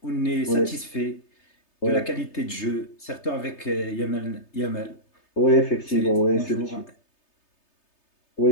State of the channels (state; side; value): late; right; 3.3 ms